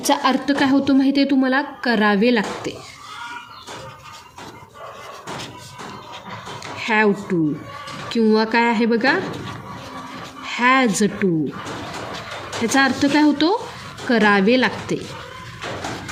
अर्थ काय होतो माहिती आहे तुम्हाला, करावे लागते. हॅव टू किंवा काय आहे बघा, हॅज टू. ह्याचा अर्थ काय होतो, करावे लागते.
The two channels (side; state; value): both; identical; correlation 1.00